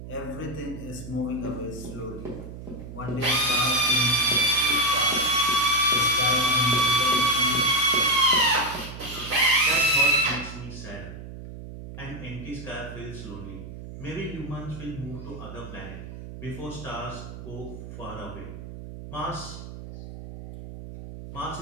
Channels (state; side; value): noise; right; hum, 12 dB below the sound